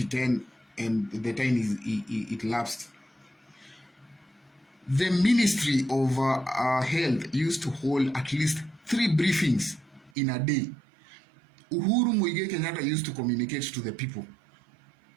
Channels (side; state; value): left; drops out; at 10.1 s